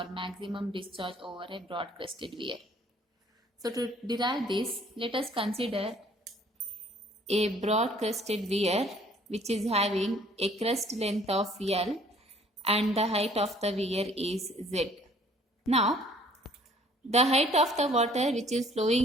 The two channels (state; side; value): normal; both; correlation 0.57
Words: maximum discharge over a broad crested weir. So to derive this, let us consider a broad crested weir which is having a crest length of L and the height of the weir is Z. Now, the height of the water which is